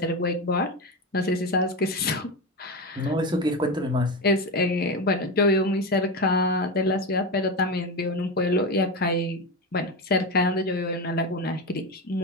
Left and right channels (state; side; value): normal; both; correlation 0.18